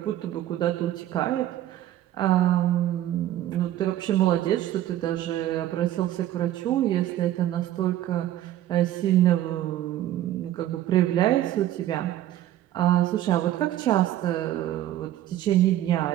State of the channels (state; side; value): quieter; left; 13.1 dB